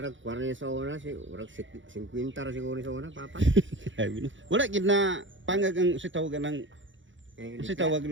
40 sa una si urag 50 ra siguro sa una papa. Sabi na. Wala gid na pangag ang si tawagan ng si tawag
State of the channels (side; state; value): left; late; 0.55 ms